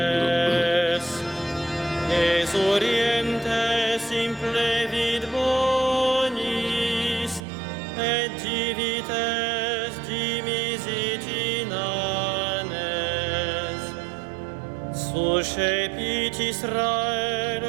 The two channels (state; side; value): drops out; left; at 7.4 s